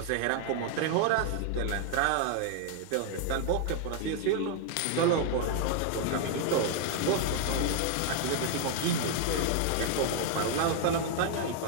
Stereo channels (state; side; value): different; both; correlation 0.00